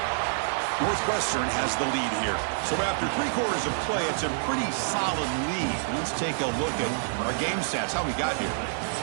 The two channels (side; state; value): left; silent; digital silence